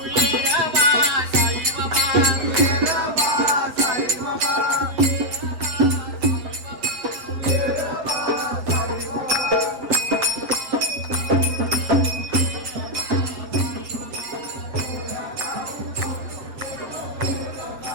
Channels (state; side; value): late; left; 8.0 ms